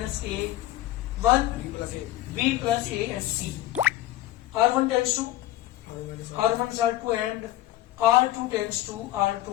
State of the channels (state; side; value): quieter; right; 15.0 dB